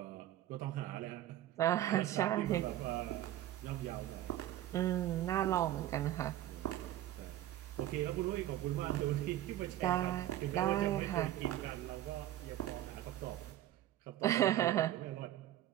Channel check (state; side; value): quieter; left; 13.4 dB